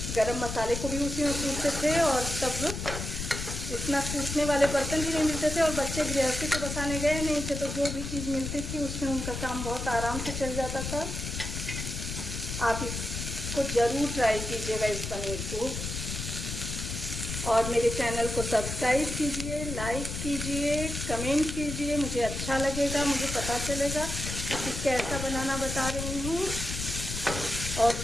गरम मसाले को भी उसी में कूटते थे, और तब इतना कूटने वाले बर्तन भी नहीं मिलते थे, और बच्चे गृहस्थी तो बसाने गए नहीं थे, तो जो भी चीज़ मिलती थी उसमें उनका काम बहुत आराम से चल जाता था। आप इसको ज़रूर ट्राई कीजिएगा, इस पनीर को। और मेरे चैनल को सब्सक्राइब कीजिए, लाइक कीजिए, कमेंट कीजिए, मुझे अच्छा लगेगा, मुझे पता चलेगा कि कैसा बनाना बता रही हूँ। और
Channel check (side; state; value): left; noise; rumble, 5 dB below the sound